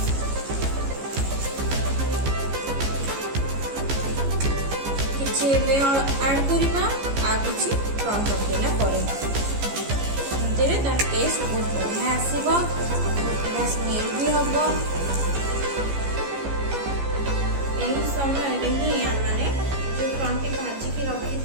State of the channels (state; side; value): late; left; 15 ms